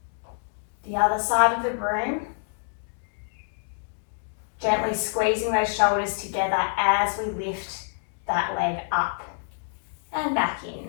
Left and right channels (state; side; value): silent; right; 60 dB below the other